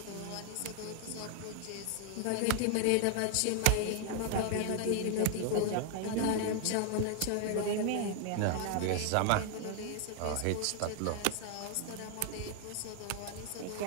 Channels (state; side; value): different; both; correlation 0.00